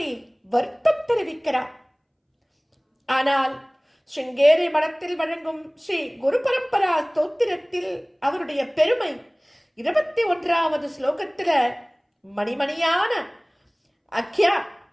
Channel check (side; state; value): both; identical; correlation 1.00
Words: வருத்தம் தெரிவிக்கிறார். ஆனால் ஸ்ருங்கேரி மடத்தில் வழங்கும் ஸ்ரீ குரு பரம்பரா ஸ்தோத்திரத்தில் அவருடைய பெருமை 21வது ஸ்லோகத்துல